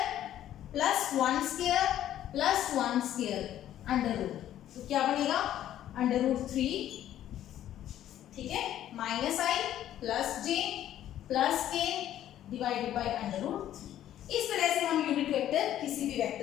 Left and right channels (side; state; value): right; quieter; 11.9 dB